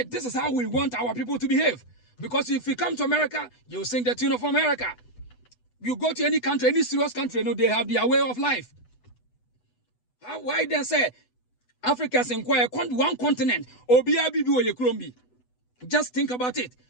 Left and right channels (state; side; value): late; right; 8.1 ms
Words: this is how we want our people to behave. Because if you come to America, you sing the tune of America. You go to any country, any serious country, they have their way of life. Why then say Africa's inquire one continent? Just think about it.